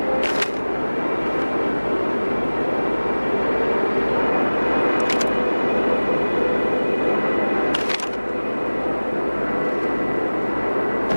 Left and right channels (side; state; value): both; inverted; correlation -1.00